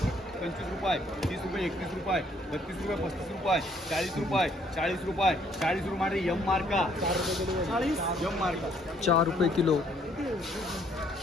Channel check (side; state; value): both; normal; correlation 0.65